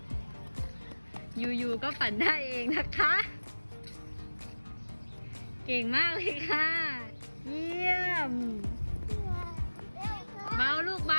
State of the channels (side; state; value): both; inverted; correlation -1.00